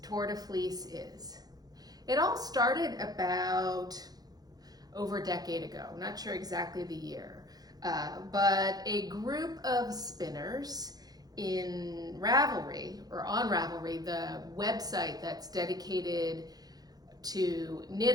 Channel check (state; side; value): late; left; 0.19 ms